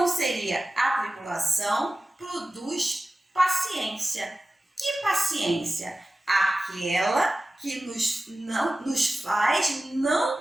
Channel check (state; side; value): normal; both; correlation 0.95